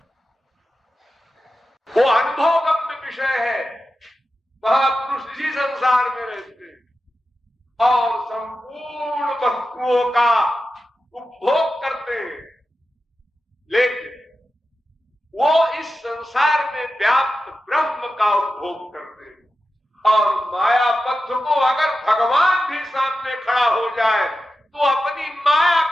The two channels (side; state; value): both; normal; correlation 0.92